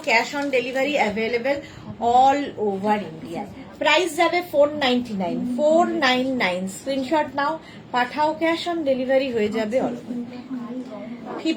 cash on delivery available all over India. Price যাবে 499, 499। স্ক্রিনশট নাও, পাঠাও, ক্যাশ অন ডেলিভারি হয়ে যাবে অল ওভার।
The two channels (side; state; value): both; identical; correlation 1.00